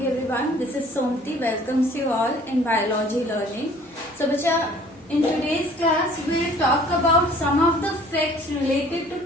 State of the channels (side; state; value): both; normal; correlation 0.53